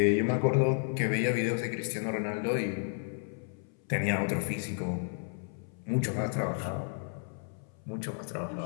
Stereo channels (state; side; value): silent; right; 56 dB below the other